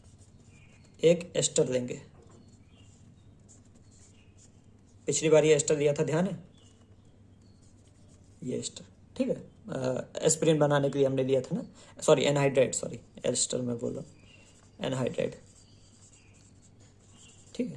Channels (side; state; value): both; identical; correlation 1.00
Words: एक एस्टर लेंगे, पिछली बार ये एस्टर लिया था, ध्यान है, ये एस्टर, ठीक है, एस्पिरिन बनाने के लिए हमने लिया था ना, सॉरी एनहाइड्राइड, सॉरी एस्टर में बोला, एनहाइड्राइड, ठीक